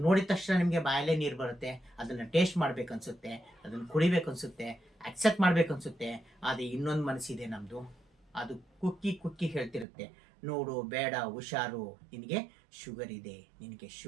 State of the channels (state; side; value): drops out; left; at 9.9 s